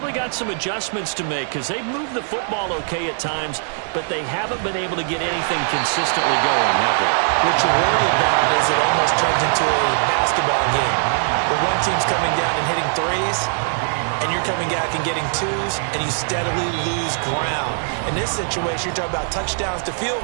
got some adjustments to make because they've moved the football okay at times, but they haven't been able to get anything consistently going, have they? What you worry about is it almost turns into a basketball game where one team's coming down and hitting threes, and you're coming back and getting twos, and you steadily lose ground. In this situation, you're talking about touchdowns to field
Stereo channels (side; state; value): left; silent; digital silence